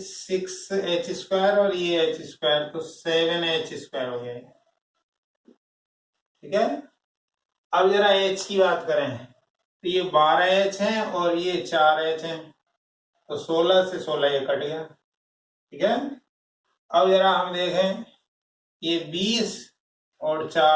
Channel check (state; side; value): identical; both; correlation 1.00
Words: 6h स्क्वायर और ये h स्क्वायर, तो 7h स्क्वायर हो गया, ठीक है। अब जरा h की बात करें तो ये 12h है और ये 4h है, तो 16 से 16 ये कट गया, ठीक है। अब जरा हम देखें, ये 20 और